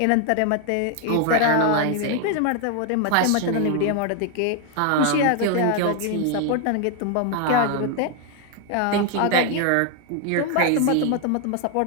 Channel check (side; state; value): both; different; correlation 0.01